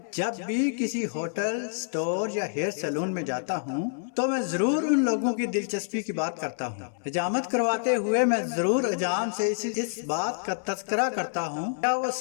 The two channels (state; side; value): silent; right; 60 dB below the other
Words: جب بھی کسی ہوٹل، سٹور یا ہیئر سیلون میں جاتا ہوں تو میں ضرور ان لوگوں کی دلچسپی کی بات کرتا ہوں۔ حجامت کرواتے ہوئے میں ضرور حجام سے اس بات کا تذکرہ کرتا ہوں، کیا وہ